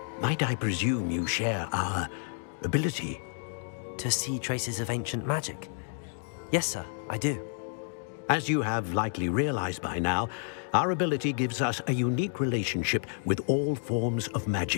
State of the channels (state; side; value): silent; right; digital silence